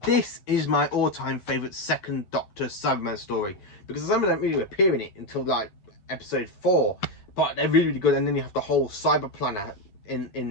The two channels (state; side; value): late; right; 10 ms